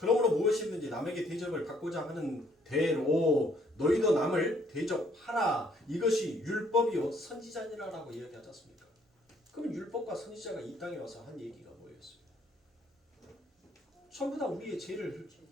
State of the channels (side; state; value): both; normal; correlation 0.65